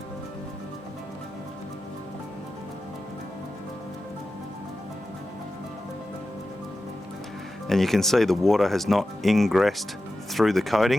And you can see the water has not ingressed through the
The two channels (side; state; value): both; normal; correlation 0.93